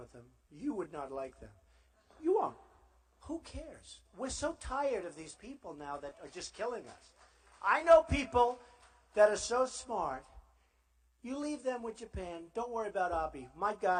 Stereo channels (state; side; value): identical; both; correlation 1.00